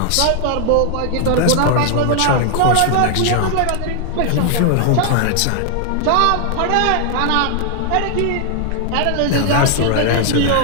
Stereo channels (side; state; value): both; different; correlation 0.00